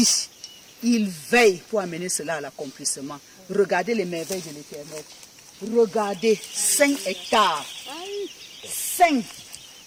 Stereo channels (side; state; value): both; identical; correlation 1.00